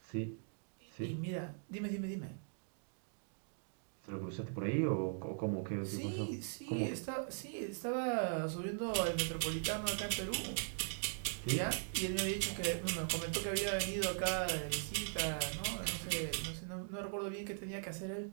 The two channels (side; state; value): left; silent; digital silence